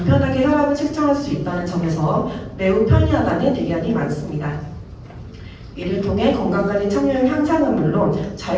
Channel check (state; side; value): identical; both; correlation 1.00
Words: 혈압을 측정할 수 있다는 점에서 매우 편리하다는 의견이 많습니다. 이를 통해 건강관리 참여율 향상은 물론